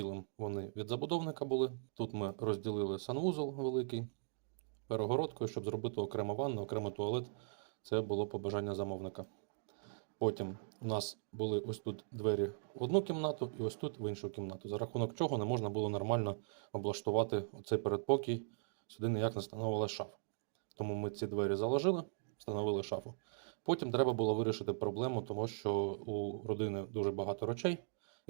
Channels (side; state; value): left; silent; digital silence